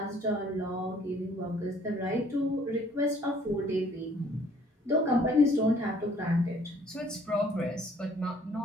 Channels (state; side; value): normal; both; correlation 0.59